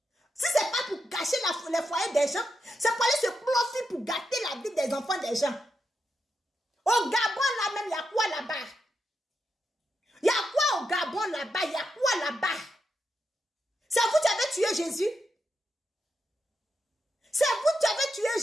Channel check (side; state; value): both; normal; correlation 0.85